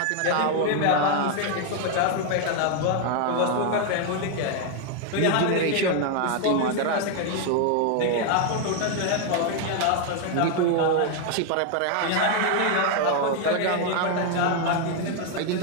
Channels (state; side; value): different; both; correlation 0.01